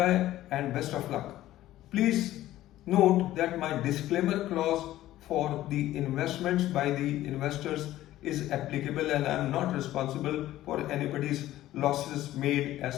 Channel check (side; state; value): right; quieter; 14.6 dB